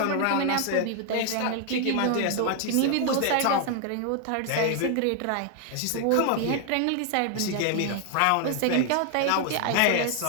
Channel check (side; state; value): both; different; correlation 0.00